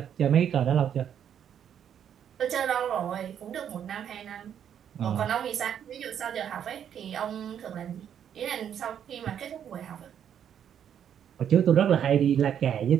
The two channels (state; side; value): quieter; left; 9.0 dB